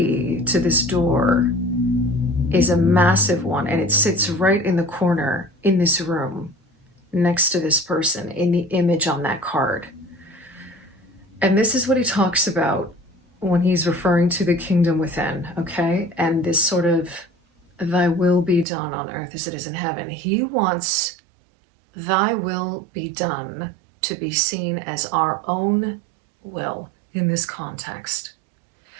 to this door is a massive one, and it sits right in the corner in this room next to this person in the image on that card. And this is what he talks about when he's referring to the kingdom within, okay? And this sort of, thy will be done on earth as it is in heaven. He wants thy will be done to be seen as our own will in this context.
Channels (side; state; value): left; drops out; at 18.7 s